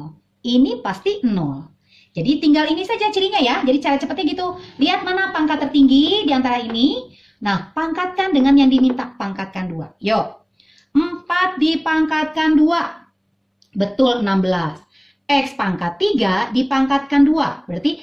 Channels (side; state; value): both; identical; correlation 1.00